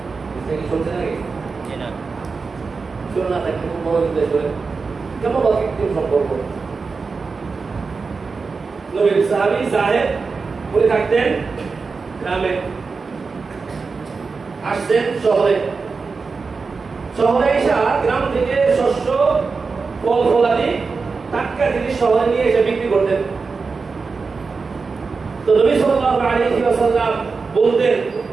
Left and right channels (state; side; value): quieter; left; 4.6 dB